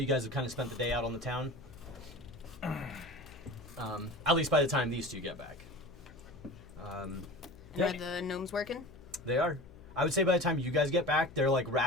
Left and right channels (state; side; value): noise; left; hum, 19 dB below the sound